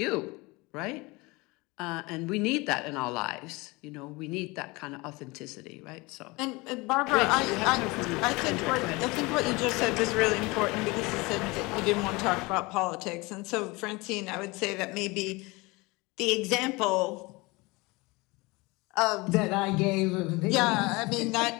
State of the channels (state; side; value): quieter; right; 24.3 dB